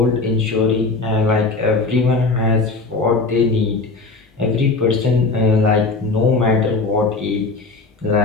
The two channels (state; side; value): quieter; right; 3.8 dB